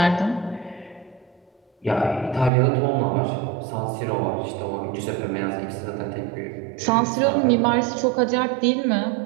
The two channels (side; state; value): left; drops out; at 2.5 s